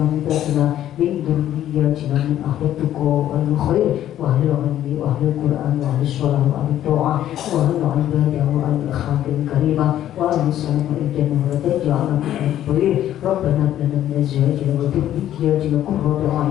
من ذرياتنا من أهل التقوى والخير وأهل العلم وأهل القرآن وأهل الصلاة وأهل الطاعة وأهل العبادة وأهل الأخلاق الكريمة وأهل السلام والجنة ولا تجعلنا من الطير ربنا هب لنا من أزواجنا وذرياتنا قرة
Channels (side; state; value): right; quieter; 11.9 dB